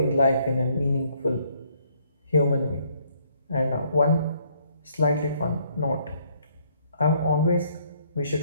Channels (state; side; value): inverted; both; correlation -0.67